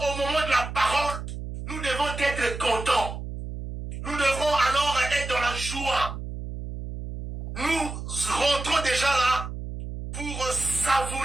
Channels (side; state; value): right; noise; hum, 8 dB below the sound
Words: au moment de la parole, nous devons être contents. Nous devons alors être dans la joie. Nous rentrons déjà là pour